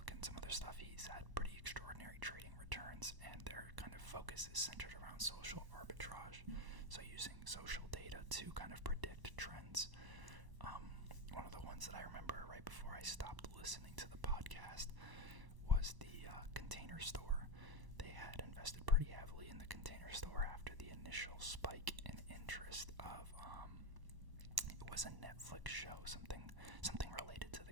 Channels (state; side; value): late; left; 1.0 ms